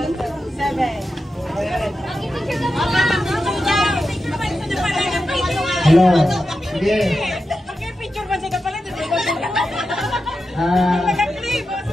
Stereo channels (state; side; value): normal; both; correlation 0.90